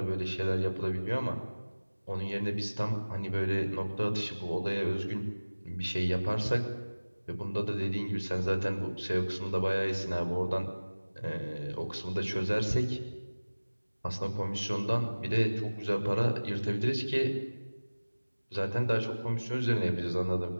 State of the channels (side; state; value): both; inverted; correlation -1.00